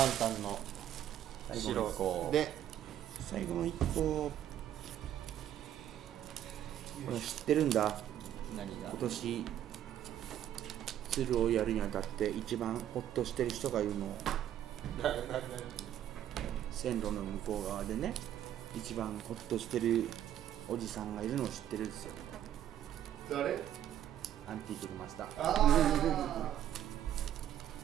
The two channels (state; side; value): quieter; left; 11.1 dB